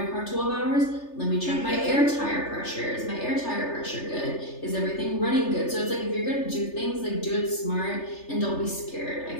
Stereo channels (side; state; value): right; late; 3.3 ms